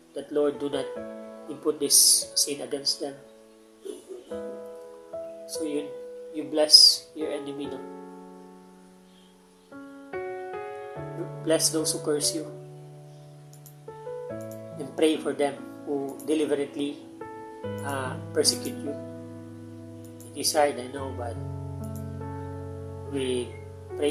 that Lord, do not impute this sin against them. So you bless your enemy, no? Bless those who curse you, and pray for them who deliberately persecute you. It is hard, I know, but with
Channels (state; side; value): identical; both; correlation 1.00